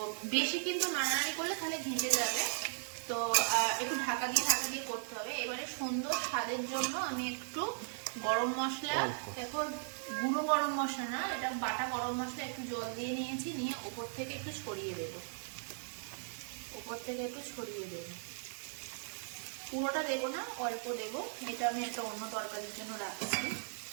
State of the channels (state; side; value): silent; left; digital silence